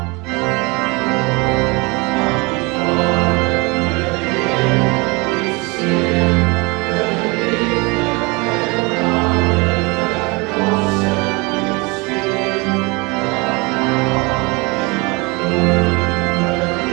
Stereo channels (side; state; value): left; quieter; 27.3 dB